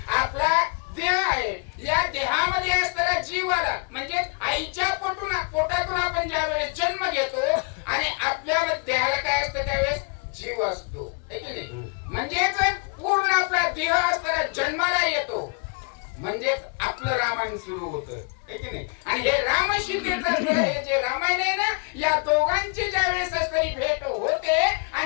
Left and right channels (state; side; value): quieter; right; 35.1 dB